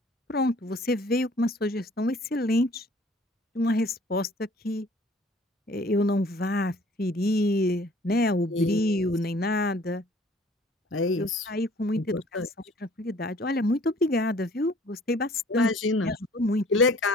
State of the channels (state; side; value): normal; both; correlation 0.54